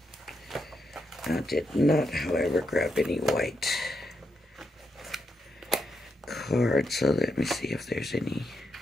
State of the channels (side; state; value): both; normal; correlation 0.82